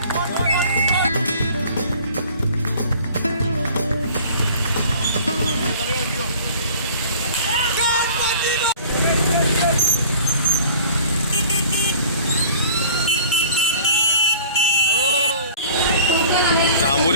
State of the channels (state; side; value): inverted; both; correlation -0.47